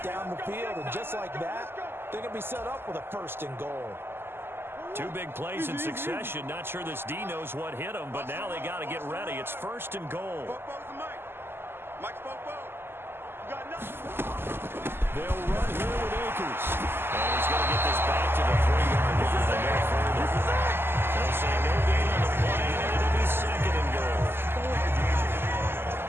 down the field, and just like that, they're going to be set up with a 1st and goal. 2 big plays in succession. Not sure this D knows what hit him, but now they got to get ready. It's 1st and goal. They'll run here with Akers. And he's going to get this back to the 3-yard line. They'll say no gain on the play, and it'll be 2nd and goal.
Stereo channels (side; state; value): left; late; 0.11 ms